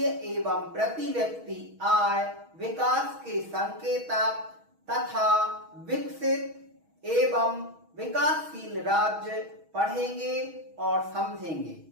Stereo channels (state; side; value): late; left; 6.3 ms